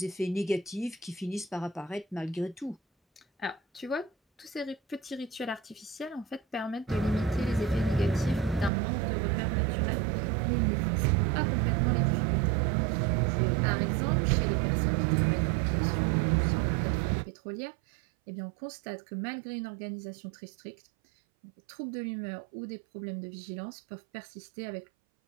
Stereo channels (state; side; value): drops out; left; at 8.7 s